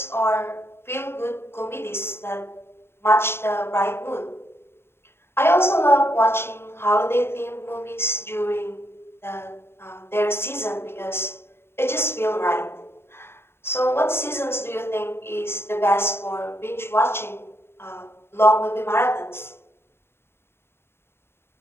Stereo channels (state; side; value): late; right; 0.12 ms